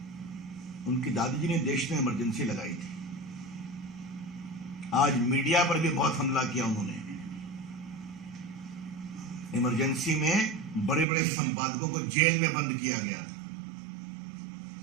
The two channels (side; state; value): left; drops out; at 11.1 s